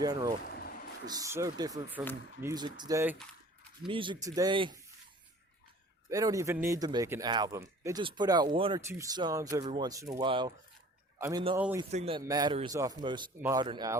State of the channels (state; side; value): normal; both; correlation 0.48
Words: is so different from music today. Music today, they don't even need to make an album. They just put out one or two songs every once in a while. I mean, the only thing that matters off most modern